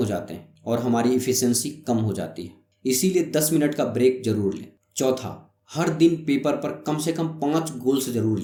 जाते हैं और हमारी इफिशियंसी कम हो जाती है। इसीलिए 10 मिनट का ब्रेक जरूर लें। चौथा, हर दिन पेपर पर कम से कम 5 गोल्स जरूर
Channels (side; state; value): both; identical; correlation 1.00